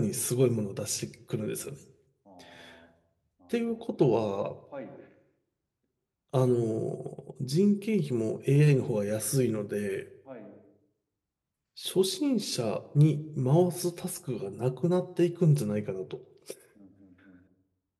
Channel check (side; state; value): both; identical; correlation 1.00